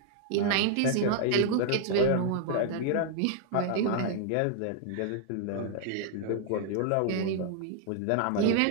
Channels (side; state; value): both; different; correlation 0.00